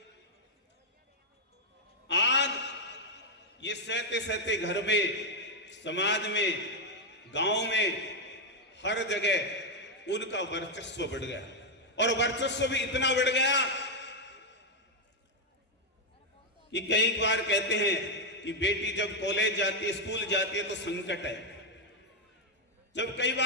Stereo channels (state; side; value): normal; both; correlation 0.01